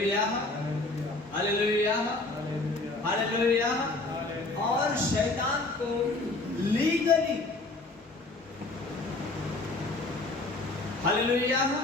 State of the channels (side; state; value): right; quieter; 3.1 dB